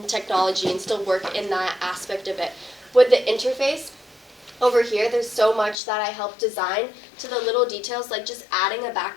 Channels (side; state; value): right; drops out; at 5.8 s